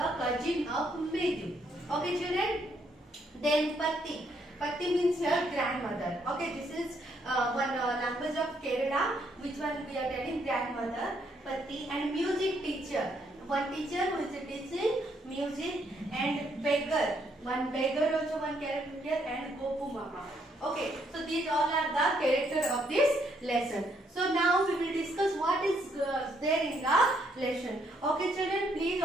cousin of Mridyu. Okay children, then Patti. Patti means her grandmother. Okay, this is one language of Kerala, which one we are telling grandmother, Patti. And music teacher, one teacher who is teaching music, and beggar, one beggar also one character here, and Gopu Mama. Okay, so these all are the character of this lesson. So now we will discuss what is there in the lesson. Okay children, please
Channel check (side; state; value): both; normal; correlation 0.72